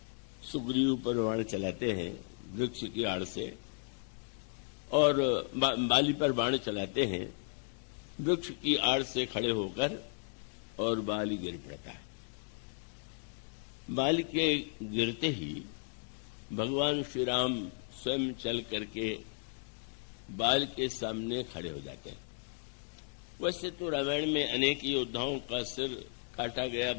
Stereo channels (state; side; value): silent; right; 55 dB below the other